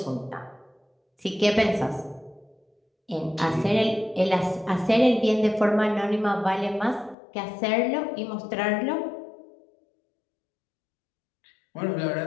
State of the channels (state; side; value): drops out; right; at 7.2 s